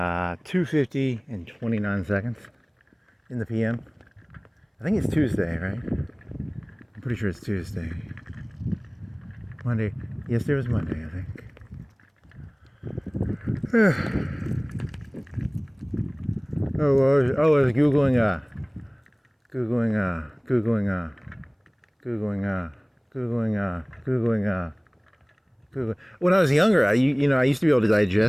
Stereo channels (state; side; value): identical; both; correlation 1.00